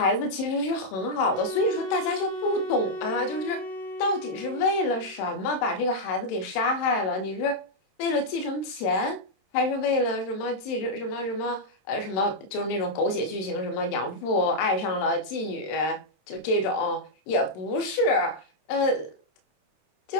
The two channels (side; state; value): right; late; 27 ms